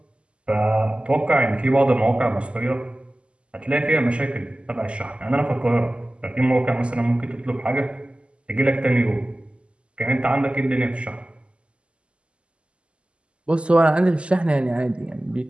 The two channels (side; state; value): left; late; 0.054 ms